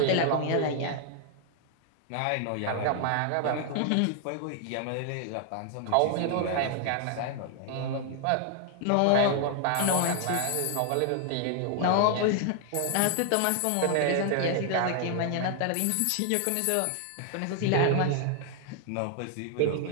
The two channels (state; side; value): different; both; correlation 0.00